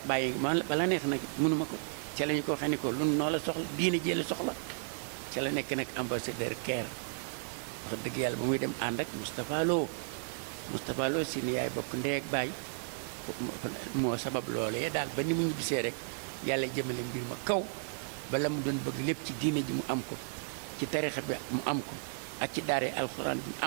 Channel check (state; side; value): silent; left; digital silence